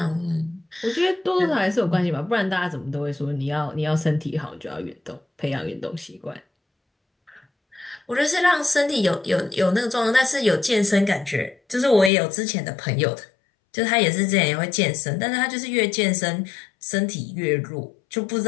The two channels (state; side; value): drops out; right; at 12.1 s